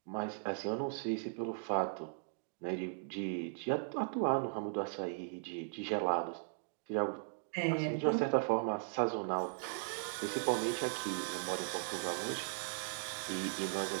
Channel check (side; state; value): left; silent; digital silence